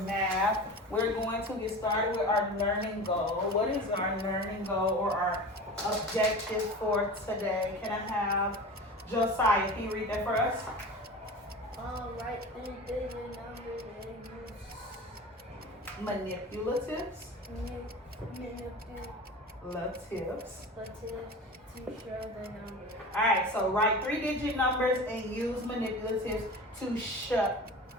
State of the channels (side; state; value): both; normal; correlation 0.33